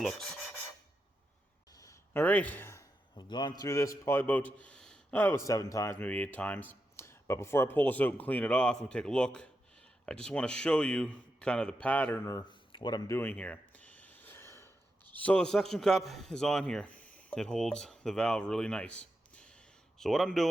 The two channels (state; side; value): normal; both; correlation 0.87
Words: looks. All right, I've gone through this probably about 7 times, maybe 8 times. But before I pull this out and clean it off and take a look, I just want to show you kind of the pattern or what I'm doing here. So the suction cup is on here. It holds the valve really nice. So what I'm